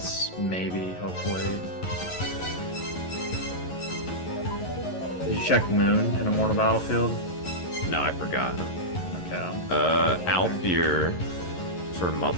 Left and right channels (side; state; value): right; late; 11 ms